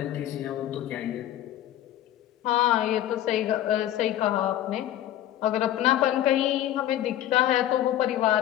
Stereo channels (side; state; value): right; quieter; 12.6 dB